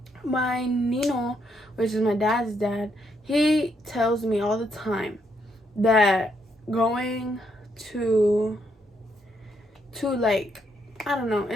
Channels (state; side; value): normal; both; correlation 0.76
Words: My Nino, which is my dad's dad, he tells me all the time that going to like, I don't know,